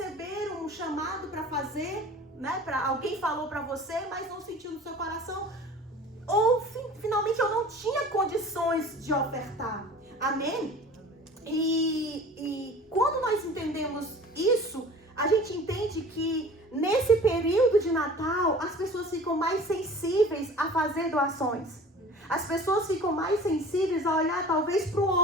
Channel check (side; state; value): both; normal; correlation 0.43